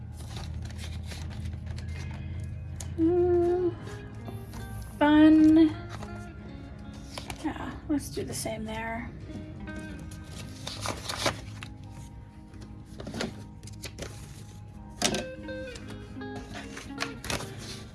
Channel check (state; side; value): identical; both; correlation 1.00